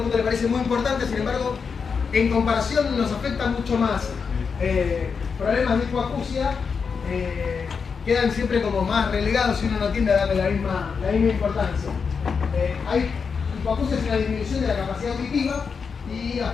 mundo le parece muy importante, sin embargo, en comparación nos afecta mucho más. Problemas de hipoacusia quedan siempre como más relegados si uno no tiende a darle la misma importancia. Hipoacusia es una disminución de la capacidad auditiva y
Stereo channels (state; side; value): quieter; right; 5.7 dB